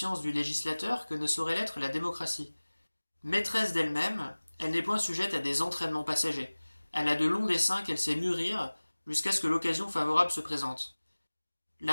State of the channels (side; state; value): both; inverted; correlation -1.00